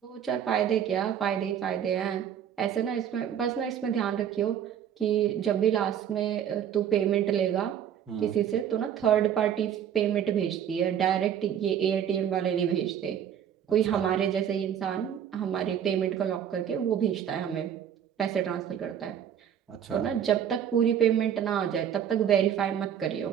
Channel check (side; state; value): left; quieter; 9.2 dB